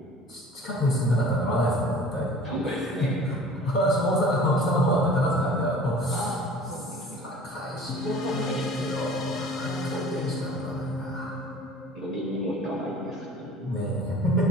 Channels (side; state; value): both; normal; correlation 0.45